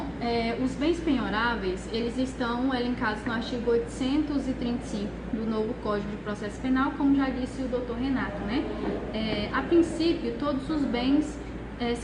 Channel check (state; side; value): identical; both; correlation 1.00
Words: Os bens penhoráveis, eles estão elencados no artigo 835 do novo Código de Processo Penal, como já disse o doutor Renato, né? A princípio, todos os bens